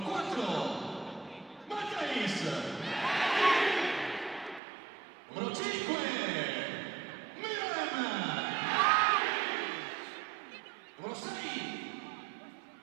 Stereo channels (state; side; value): drops out; left; at 4.6 s